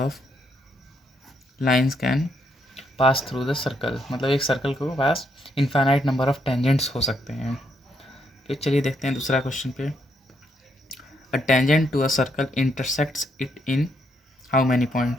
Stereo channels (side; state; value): both; normal; correlation 0.75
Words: lines can pass through the circle. मतलब एक सर्कल को पास इनफाइनाइट नंबर ऑफ टेंजेंट्स हो सकते हैं। फिर चलिए देखते हैं दूसरा क्वेश्चन पे। A tangent to a circle intersects it in how many